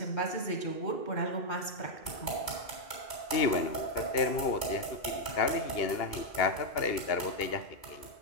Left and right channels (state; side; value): late; right; 2.8 ms